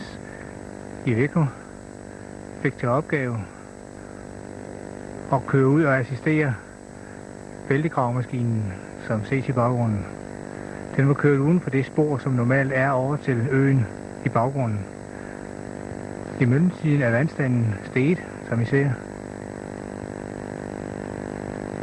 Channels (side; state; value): both; identical; correlation 1.00